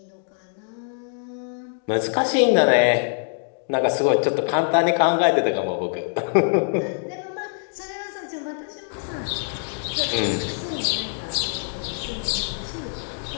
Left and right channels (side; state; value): right; silent; digital silence